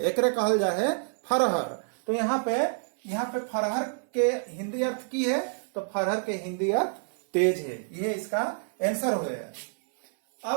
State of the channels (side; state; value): left; silent; 59 dB below the other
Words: एकरे कहल जा है फरहर। तो यहाँ पे फरहर के हिंदी अर्थ की है, तो फरहर के हिंदी अर्थ तेज है। ये इसका आंसर हो गया।